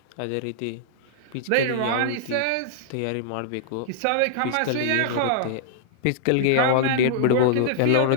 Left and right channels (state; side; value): different; both; correlation -0.01